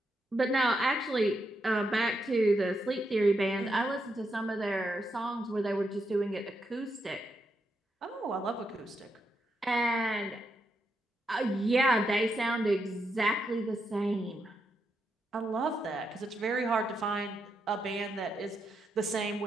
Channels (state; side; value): normal; both; correlation 0.82